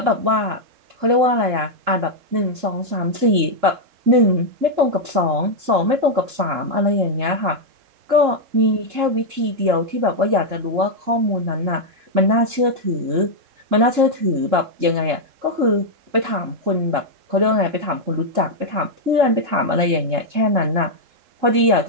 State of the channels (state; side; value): late; left; 3.7 ms